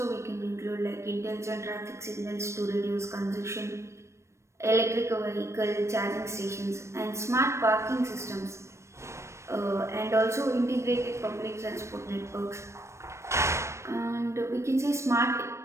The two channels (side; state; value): left; late; 0.13 ms